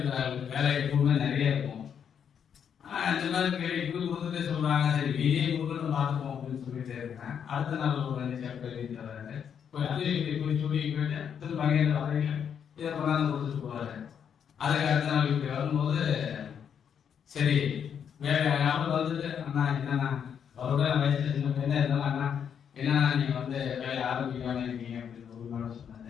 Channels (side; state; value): right; quieter; 7.9 dB